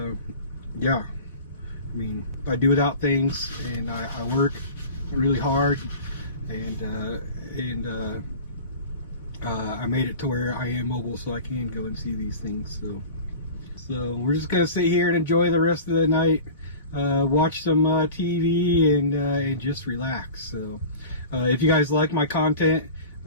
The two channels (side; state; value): both; inverted; correlation -0.37